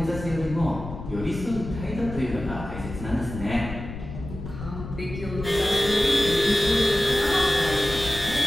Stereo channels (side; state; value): left; noise; rumble, 10 dB below the sound